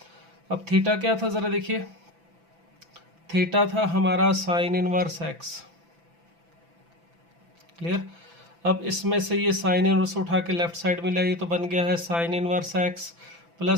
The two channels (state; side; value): late; left; 5.9 ms